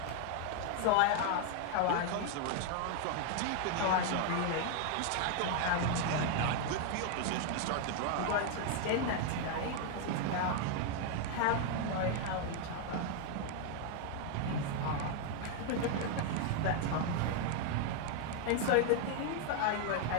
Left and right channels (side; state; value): both; different; correlation 0.00